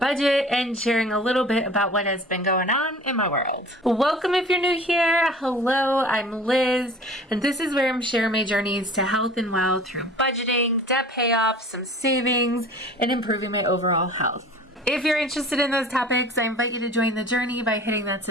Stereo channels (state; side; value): normal; both; correlation 0.44